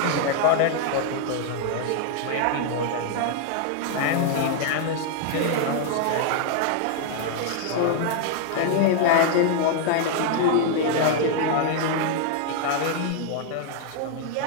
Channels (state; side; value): different; both; correlation 0.00